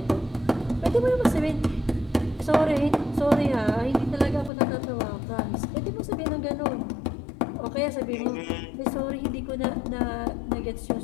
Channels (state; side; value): drops out; right; at 4.5 s